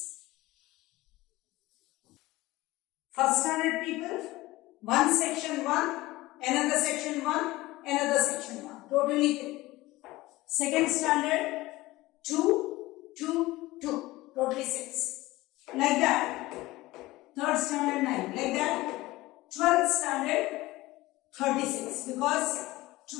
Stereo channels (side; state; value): right; quieter; 18.9 dB